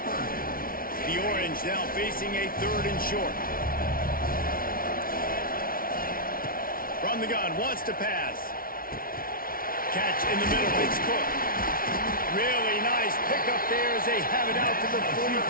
The Orange now facing a 3rd and short. From the gun, wants to pass. Catch in the middle, it's Cook. Really nice pickup there as they have it out to the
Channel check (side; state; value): right; late; 0.42 ms